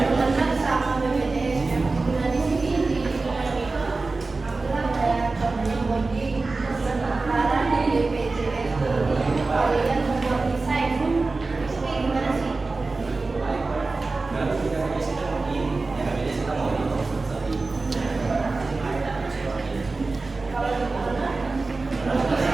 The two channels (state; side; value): quieter; left; 3.6 dB